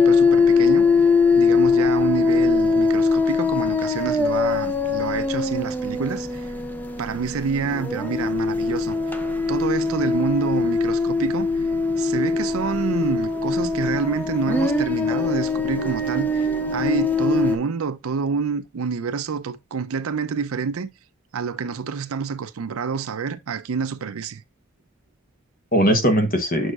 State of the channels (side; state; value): both; normal; correlation 0.59